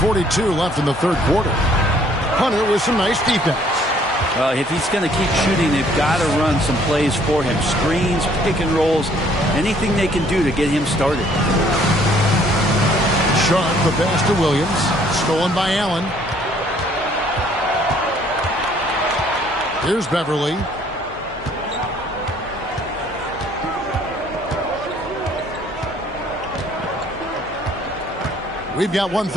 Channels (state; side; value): normal; both; correlation 0.61